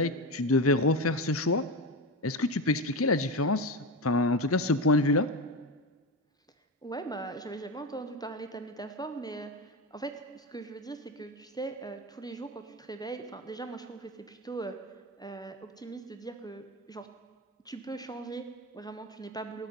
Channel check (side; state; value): both; normal; correlation 0.18